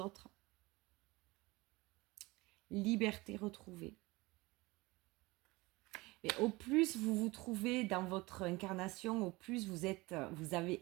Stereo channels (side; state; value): left; quieter; 22.3 dB